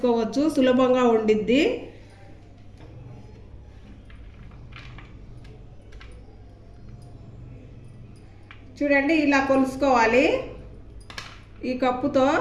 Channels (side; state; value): both; identical; correlation 1.00